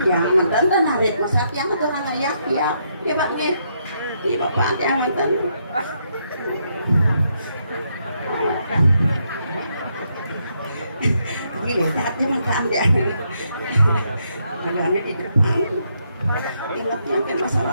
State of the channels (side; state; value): both; inverted; correlation -0.77